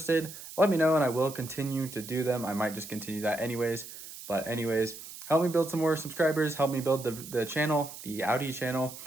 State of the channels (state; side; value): noise; right; hiss, 13 dB below the sound